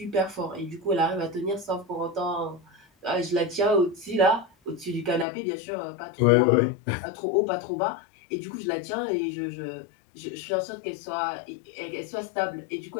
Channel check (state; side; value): drops out; right; at 5.2 s